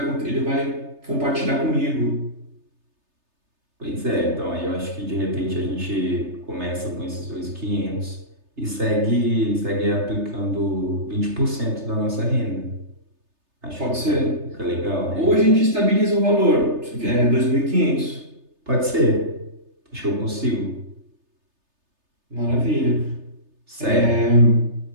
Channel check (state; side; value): late; left; 3.3 ms